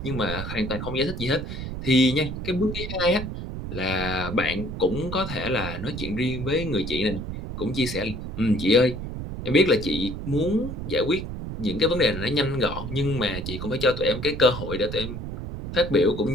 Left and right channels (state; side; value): noise; right; rumble, 7 dB below the sound